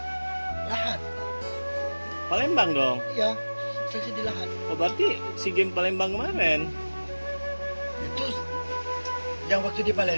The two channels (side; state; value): both; inverted; correlation -1.00